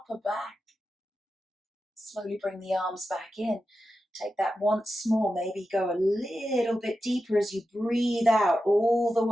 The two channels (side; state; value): both; normal; correlation 0.91